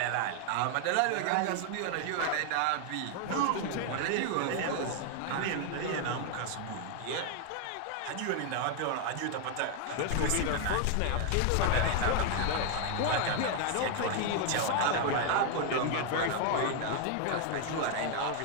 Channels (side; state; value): both; different; correlation 0.00